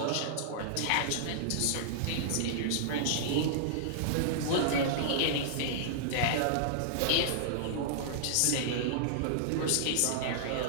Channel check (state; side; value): different; both; correlation -0.01